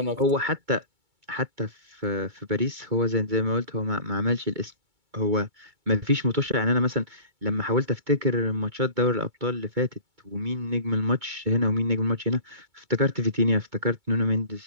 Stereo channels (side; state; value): left; late; 2.2 ms